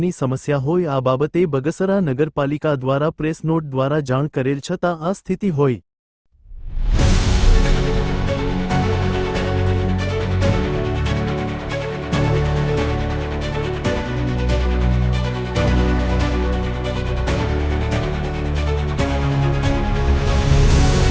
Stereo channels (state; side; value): identical; both; correlation 1.00